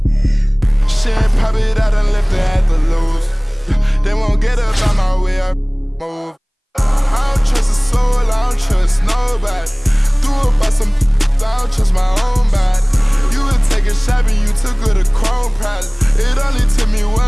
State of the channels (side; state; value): both; identical; correlation 1.00